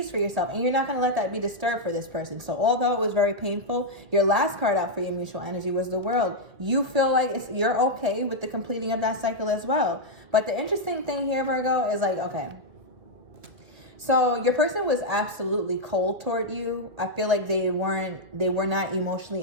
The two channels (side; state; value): left; late; 1.8 ms